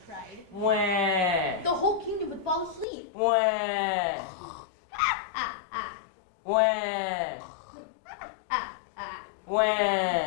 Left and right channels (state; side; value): drops out; right; at 2.9 s